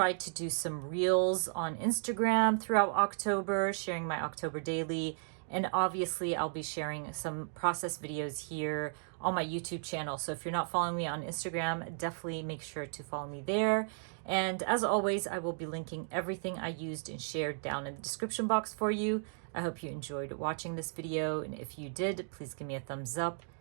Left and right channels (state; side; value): silent; left; digital silence